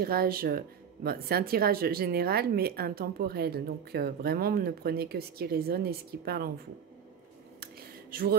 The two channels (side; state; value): left; quieter; 7.7 dB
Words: c'est un tirage général mais intemporel. Donc vraiment ne prenez que ce qui résonne et ce qui parle en vous. Je vous